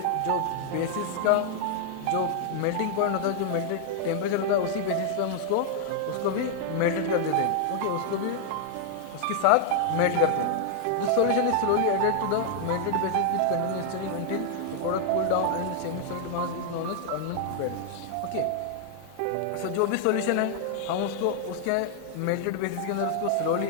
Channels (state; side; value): different; both; correlation 0.00